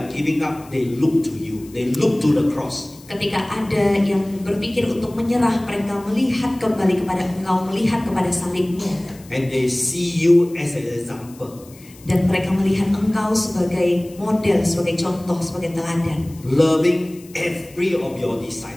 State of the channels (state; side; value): noise; left; hiss, 23 dB below the sound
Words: giving up, they look to you. They look to the cross. Ketika ada yang berpikir untuk menyerah, mereka melihat kembali kepada Engkau, melihat kepada salibmu. And they see you as an example. Dan mereka melihat Engkau sebagai model, sebagai contoh, sebagai teladan. Loving every of your